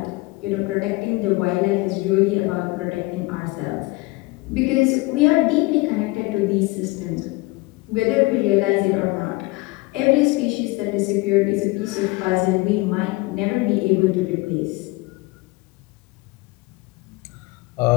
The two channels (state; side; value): quieter; right; 22.8 dB